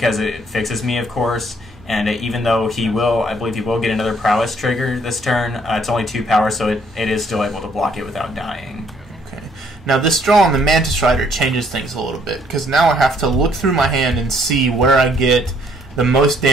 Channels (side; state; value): both; normal; correlation 0.65